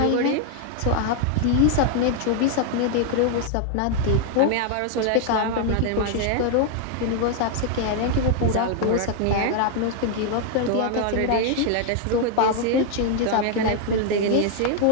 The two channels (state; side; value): different; both; correlation 0.00